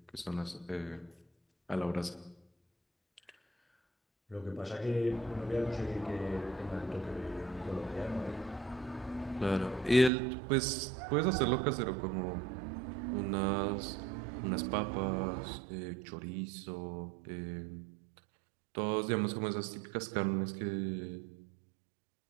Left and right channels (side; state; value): left; drops out; at 10.1 s